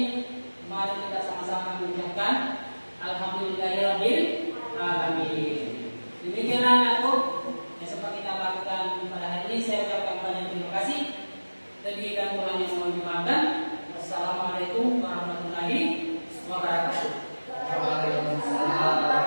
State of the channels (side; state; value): both; inverted; correlation -1.00